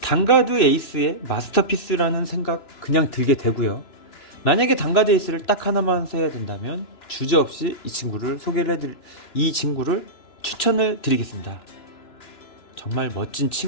단가드 에이스의 마스터피스라는 생각 그냥 들게 되고요. 만약에 단가드 에이스를 딱 하나만 써야 된다면 주저없이 이 친구를 추천을 드리겠습니다. 정말 멋진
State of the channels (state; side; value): late; right; 2.9 ms